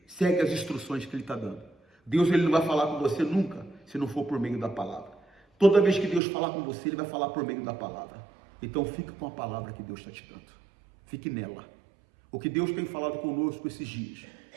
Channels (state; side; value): drops out; left; at 6.2 s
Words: segue as instruções que Ele está dando. Deus ele não vai falar com você nunca, se não for por meio da palavra. Toda vez que Deus falar com você, Ele vai falar por meio da palavra. Então fique com a palavra que Deus está te dando. Fique nela. O que Deus tem falado conosco esses dias,